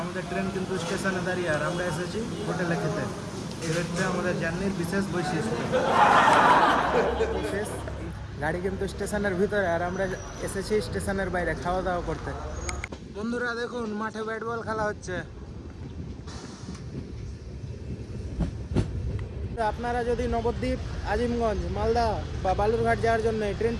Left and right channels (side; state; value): both; identical; correlation 1.00